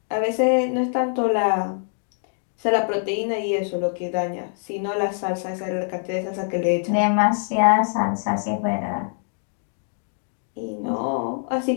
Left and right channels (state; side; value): silent; right; digital silence